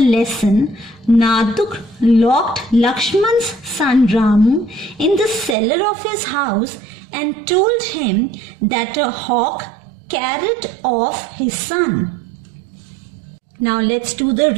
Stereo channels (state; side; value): drops out; left; at 5.6 s